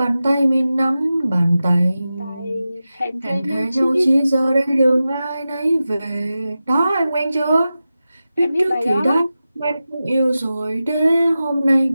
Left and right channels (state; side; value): inverted; both; correlation -0.93